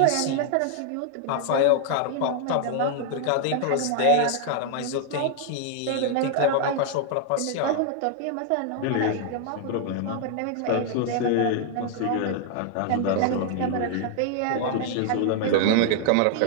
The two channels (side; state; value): both; different; correlation 0.00